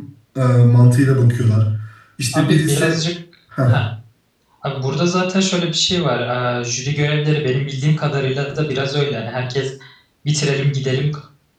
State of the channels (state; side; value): identical; both; correlation 1.00